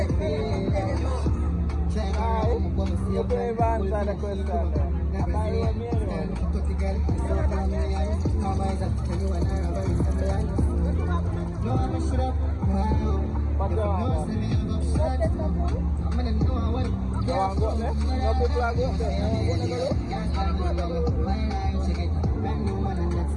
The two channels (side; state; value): both; identical; correlation 1.00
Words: Io poi avanza da questa. Ma io